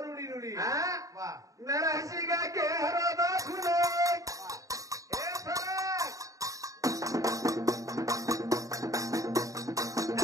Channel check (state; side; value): late; left; 0.16 ms